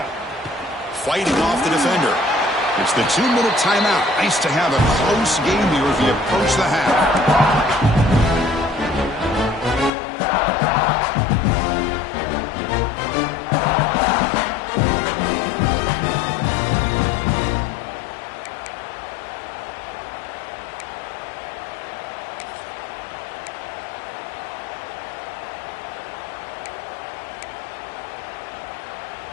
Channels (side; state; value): right; drops out; at 9.9 s